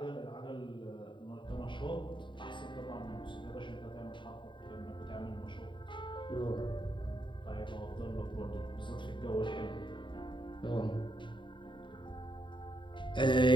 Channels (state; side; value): late; right; 0.23 ms